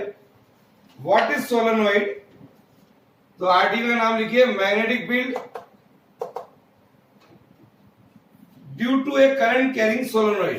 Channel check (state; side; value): identical; both; correlation 1.00